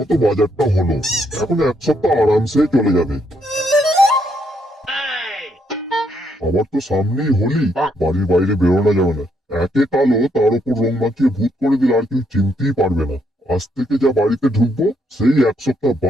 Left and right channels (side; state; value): both; normal; correlation 0.74